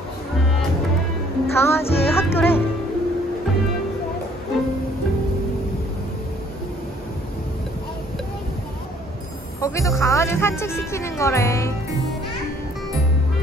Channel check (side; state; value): both; normal; correlation 0.61